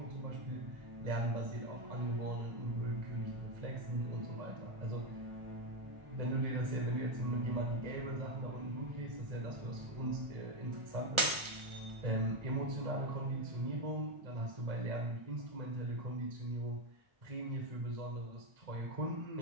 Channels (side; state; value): left; late; 1.4 ms